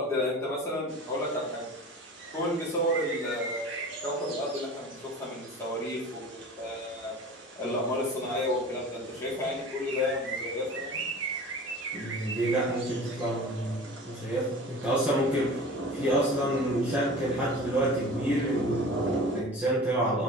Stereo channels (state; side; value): normal; both; correlation 0.38